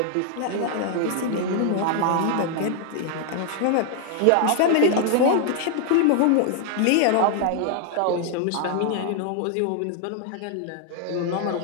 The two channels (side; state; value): both; different; correlation 0.00